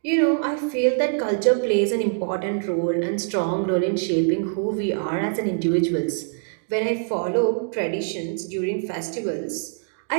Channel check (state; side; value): silent; left; digital silence